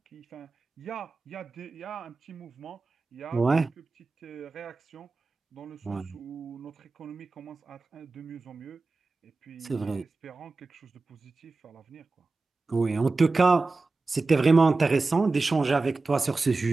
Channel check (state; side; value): quieter; left; 3.7 dB